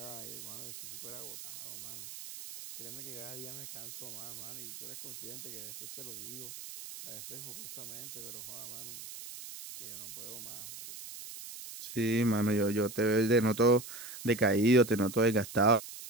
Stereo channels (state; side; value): noise; right; hiss, 12 dB below the sound